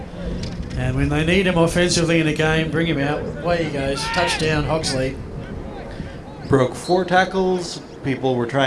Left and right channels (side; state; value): both; identical; correlation 1.00